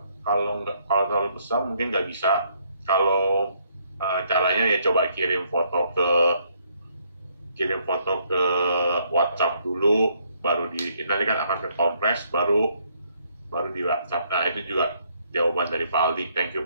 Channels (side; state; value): both; inverted; correlation -0.70